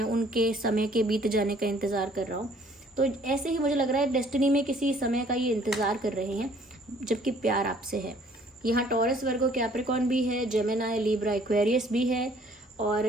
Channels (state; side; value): normal; both; correlation 0.59